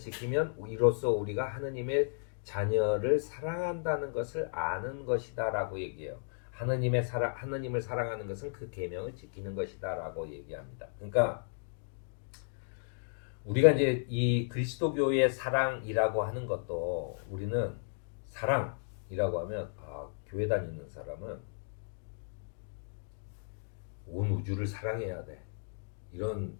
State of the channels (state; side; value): silent; right; digital silence